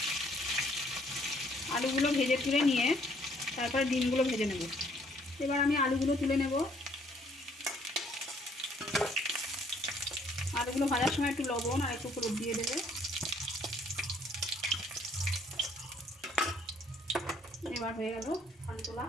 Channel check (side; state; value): both; normal; correlation 0.63